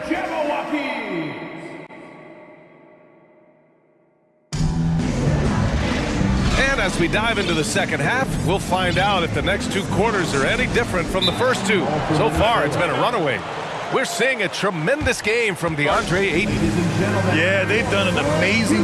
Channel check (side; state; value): both; identical; correlation 1.00